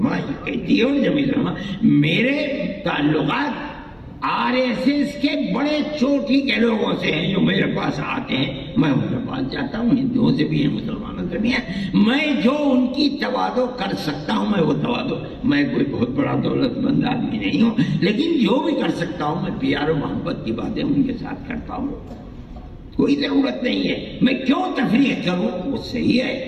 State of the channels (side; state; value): both; identical; correlation 1.00